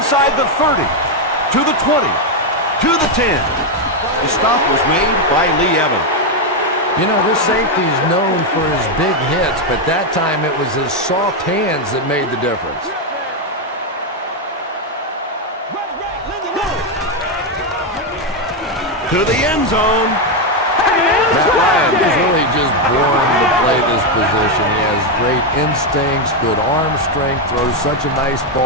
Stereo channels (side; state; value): both; normal; correlation 0.05